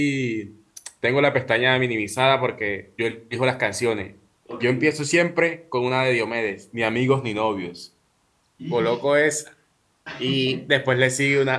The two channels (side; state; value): both; identical; correlation 1.00